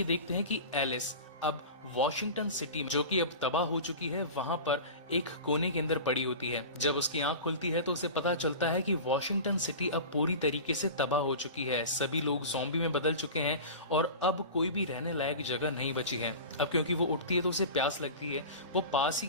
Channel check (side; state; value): both; inverted; correlation -0.32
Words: देखते हैं कि एलिस अब वॉशिंगटन सिटी जो कि अब तबाह हो चुकी है वहां पर एक कोने के अंदर पड़ी होती है. जब उसकी आंख खुलती है तो उसे पता चलता है कि वॉशिंगटन सिटी अब पूरी तरीके से तबाह हो चुकी है. सभी लोग ज़ॉम्बी में बदल चुके हैं और अब कोई भी रहने लायक जगह नहीं बची है. अब क्योंकि वो उठती है तो उसे प्यास लगती है. वो पास ही